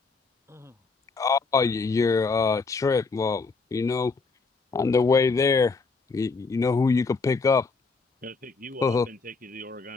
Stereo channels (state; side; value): quieter; right; 4.3 dB